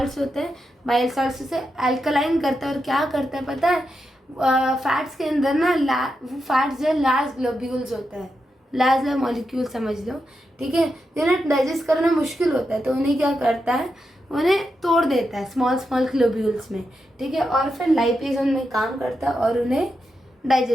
होते हैं। बाइल सॉल्ट्स उसे अल्कलाइन करता है, और क्या करता है पता है, फैट्स के अंदर ना फैट्स जो है लार्ज ग्लोब्यूल्स होता है, लार्ज मॉलिक्यूल समझ लो, ठीक है, जिन्हें डाइजेस्ट करना मुश्किल होता है, तो उन्हें क्या करता है, उन्हें तोड़ देता है स्मॉल ग्लोब्यूल्स में, ठीक है, और फिर लाइपेज उनमें काम करता है और उन्हें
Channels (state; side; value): normal; both; correlation 0.86